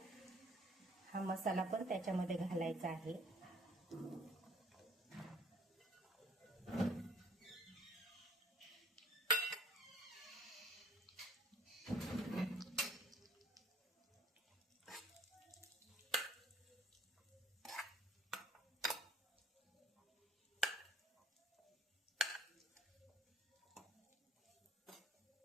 हा मसाला पण त्याच्यामध्ये घालायचा आहे.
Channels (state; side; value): normal; both; correlation 0.57